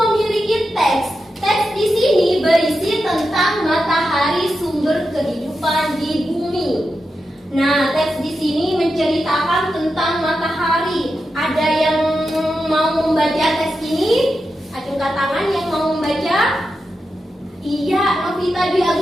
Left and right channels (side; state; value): both; normal; correlation 0.89